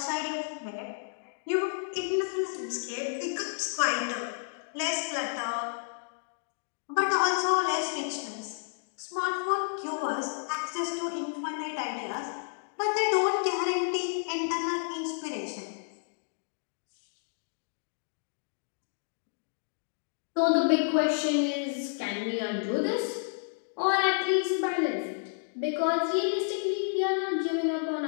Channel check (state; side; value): silent; right; digital silence